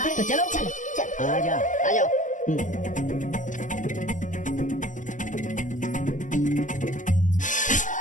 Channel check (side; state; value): right; late; 0.37 ms